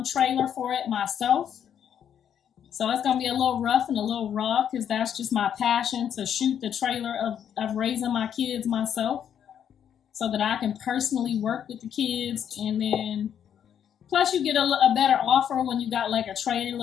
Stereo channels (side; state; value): right; quieter; 9.0 dB